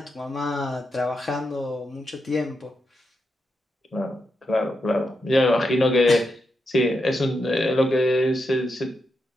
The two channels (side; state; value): both; normal; correlation 0.85